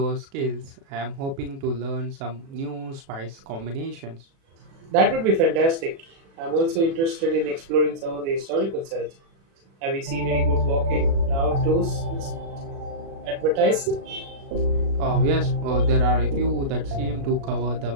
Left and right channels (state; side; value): late; left; 36 ms